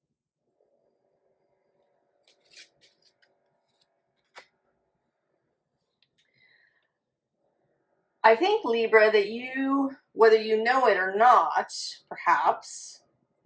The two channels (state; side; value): identical; both; correlation 1.00